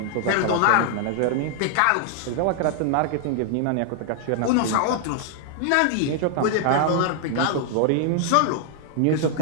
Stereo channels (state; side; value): different; both; correlation 0.00